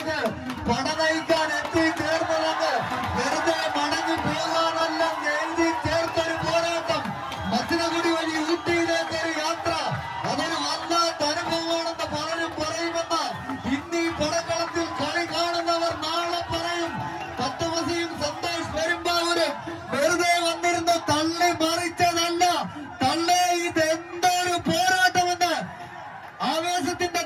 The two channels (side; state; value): both; identical; correlation 1.00